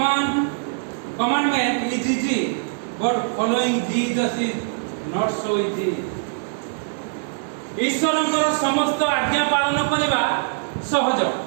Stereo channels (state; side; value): silent; left; digital silence